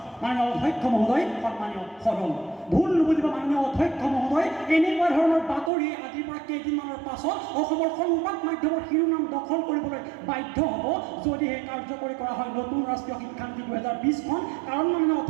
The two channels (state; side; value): drops out; left; at 5.7 s